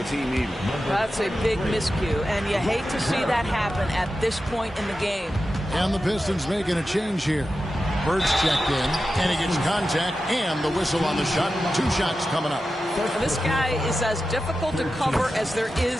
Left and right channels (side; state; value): both; normal; correlation 0.92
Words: team even. That's a big miscue, and you hate to see that happen at this point in the game. And the Pistons making a change here. Bird's checked in, and he gets contact and the whistle on the shot. 2 shots coming up. This guy is as difficult to cover as there